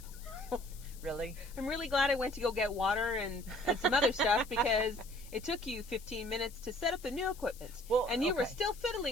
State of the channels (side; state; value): left; noise; hiss, 19 dB below the sound